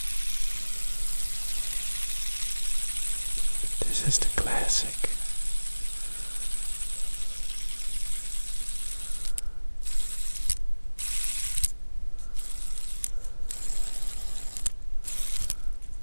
this is the classic.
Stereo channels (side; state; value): both; inverted; correlation -1.00